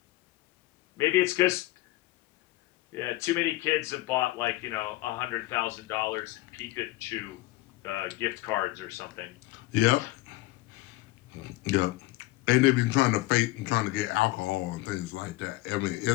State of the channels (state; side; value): quieter; right; 18.6 dB